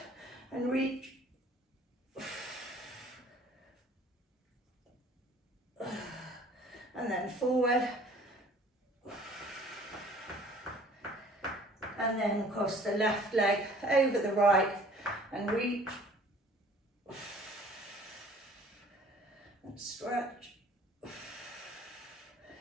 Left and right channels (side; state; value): both; normal; correlation 0.52